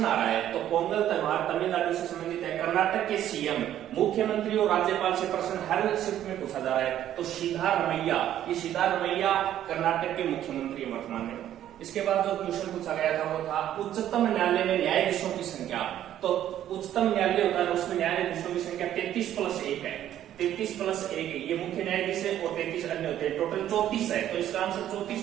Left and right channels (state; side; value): quieter; left; 11.6 dB